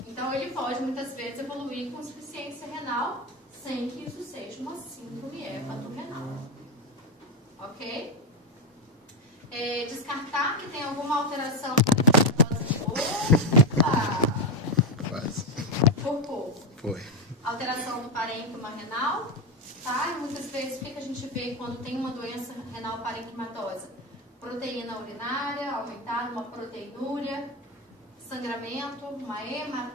Então, ele pode, muitas vezes, evoluir com insuficiência renal, sem que isso seja uma síndrome hepatorrenal. Ok? Descartar que tem alguma alteração por pouco. Foi. Alteração do parênquima renal, tá? E muitas vezes, o que a gente vê quando tem uma doença renal parenquimatosa? Proteína urinária aumentada, uma proteinúria, sangramento, uma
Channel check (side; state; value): both; normal; correlation 0.09